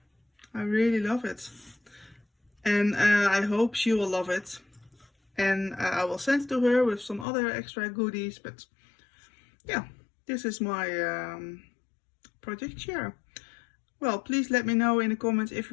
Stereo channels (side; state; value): right; drops out; at 7.2 s